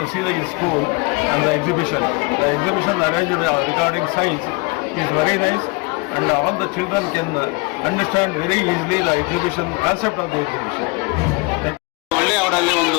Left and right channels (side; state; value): right; quieter; 27.4 dB